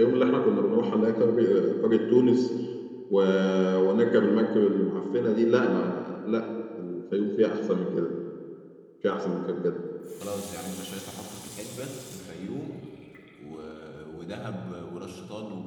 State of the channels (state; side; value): identical; both; correlation 1.00